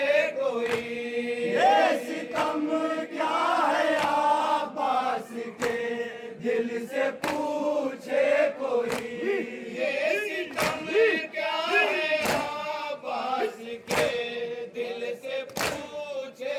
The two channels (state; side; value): identical; both; correlation 1.00